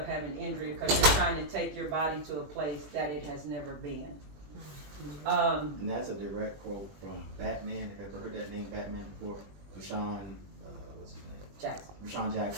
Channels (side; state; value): left; late; 21 ms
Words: having injury because you're trying to take your body to a place that it has never been. And that's a direct quote from Batman. Have you ever heard that name, Batman, before? Rashawn, what's his name? Jackson. Rashawn